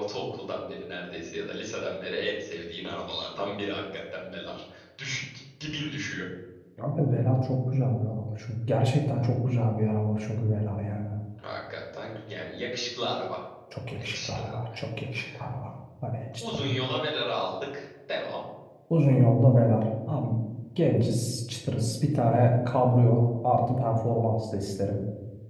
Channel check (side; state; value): both; identical; correlation 1.00